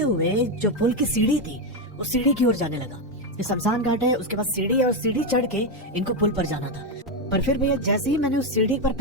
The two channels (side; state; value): both; normal; correlation 0.08